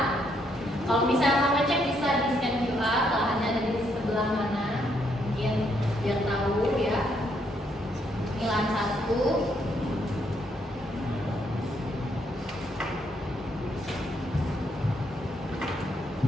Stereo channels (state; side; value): normal; both; correlation 0.74